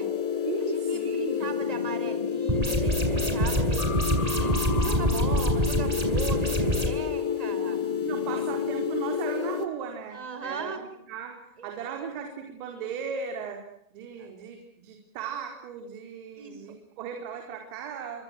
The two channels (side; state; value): left; late; 1.8 ms